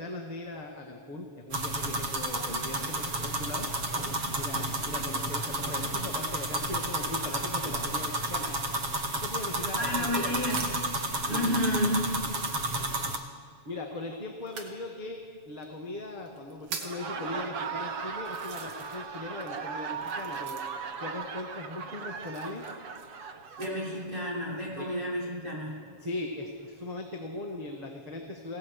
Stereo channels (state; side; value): late; left; 7.3 ms